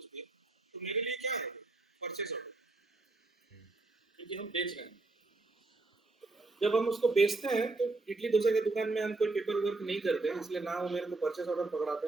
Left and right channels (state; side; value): quieter; left; 3.3 dB